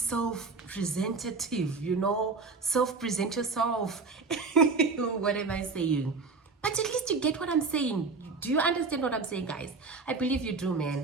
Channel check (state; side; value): quieter; left; 4.3 dB